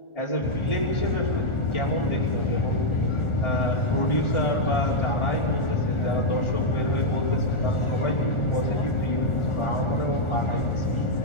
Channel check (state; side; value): late; right; 1.4 ms